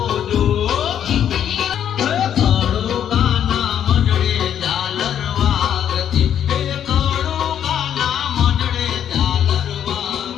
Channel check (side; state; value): right; quieter; 9.6 dB